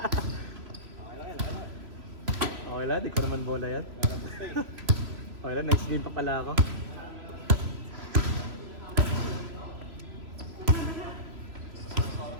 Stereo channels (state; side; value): late; left; 3.2 ms